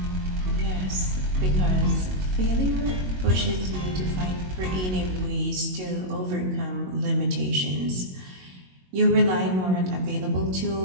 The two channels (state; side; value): late; left; 22 ms